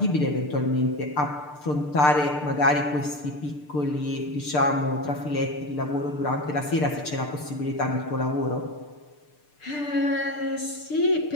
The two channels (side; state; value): right; late; 6.7 ms